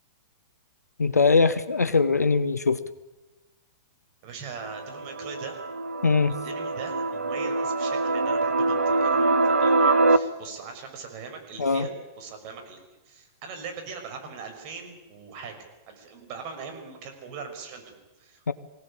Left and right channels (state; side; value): inverted; both; correlation -0.66